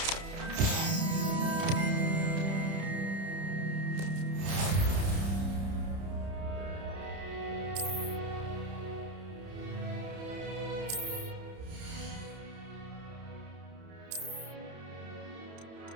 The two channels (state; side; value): late; left; 31 ms